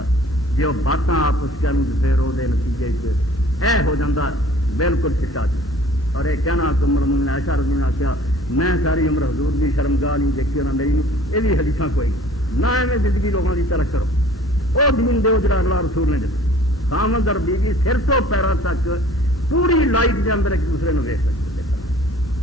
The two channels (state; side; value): normal; both; correlation 0.51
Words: جو باتاں آپس کے پھر وہ نتیجے ہو جاتا بالکل چٹا چ اور یہ کہنا تو مرمن عائشہ رضی اللہ عنہا کیا میں ساری عمر حضور کی شرمگاہ نہیں دیکھی اور میری یہ بھی حدیث کوئی نہ ایویں زندگی لوگوں کی طرح کرو وہ دین دو جڑا اللہ رسول نے دتا خامد اور بیوی سر تو پیروں تک پوری لائف کے اندر ایک دوسرے کو ویچ سکتے